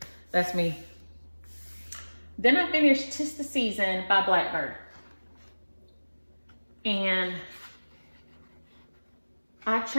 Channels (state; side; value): inverted; both; correlation -1.00